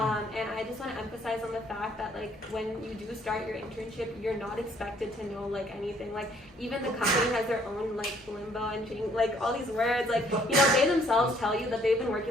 I just want to emphasize on the fact that like when you do start your internship, you're not expected to know like anything. Like even the company has their own like limbo and like all these words. Like they themselves tell you that they've been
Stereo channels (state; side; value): normal; both; correlation 0.63